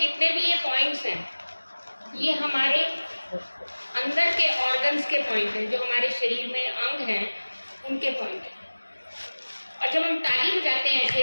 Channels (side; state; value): both; inverted; correlation -1.00